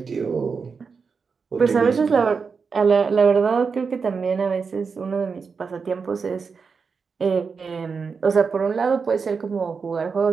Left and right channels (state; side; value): quieter; left; 5.3 dB